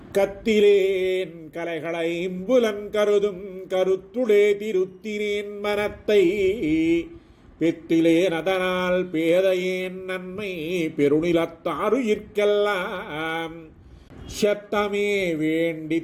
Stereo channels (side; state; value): both; identical; correlation 1.00